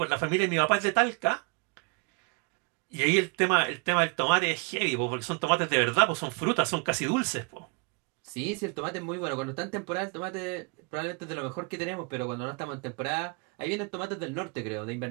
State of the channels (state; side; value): quieter; left; 32.5 dB